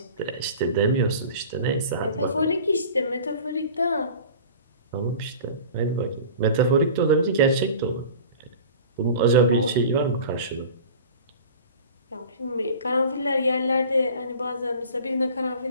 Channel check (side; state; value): both; inverted; correlation -0.40